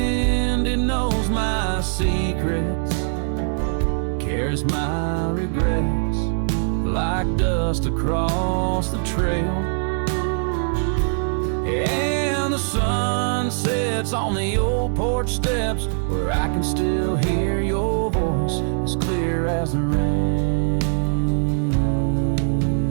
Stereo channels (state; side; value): silent; left; digital silence